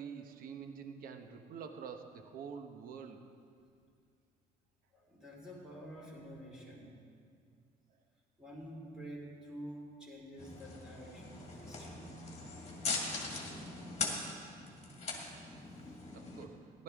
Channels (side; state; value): both; normal; correlation 0.23